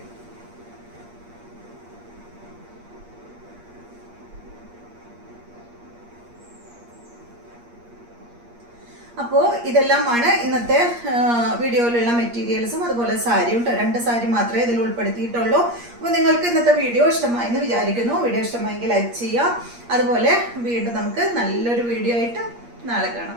അപ്പോൾ ഇതെല്ലാമാണ് ഇന്നത്തെ വീഡിയോയിലുള്ള മെറ്റീരിയൽസും അതുപോലെ സാരിയും. 2 സാരി മാത്രമേ ഇതിൽ ഉൾപ്പെടുത്തിയിട്ടുള്ളൂ. അപ്പോൾ നിങ്ങൾക്ക് ഇന്നത്തെ വീഡിയോ ഇഷ്ടമായി എന്ന് വിചാരിക്കുന്നു. വീഡിയോ ഇഷ്ടമായെങ്കിൽ ലൈക്ക് ചെയ്യുക. അതുപോലെ വീണ്ടും നമുക്ക് നല്ലൊരു വീഡിയോ ആയിട്ട് നാളെ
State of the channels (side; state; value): left; late; 8.5 ms